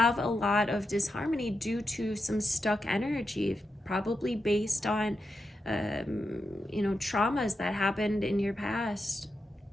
a lot of disharmony due to some stuck energy, probably based on, you know, traumas that happened in your past,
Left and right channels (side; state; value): both; normal; correlation 0.87